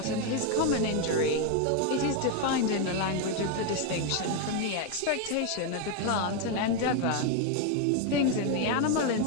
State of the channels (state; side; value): different; both; correlation 0.01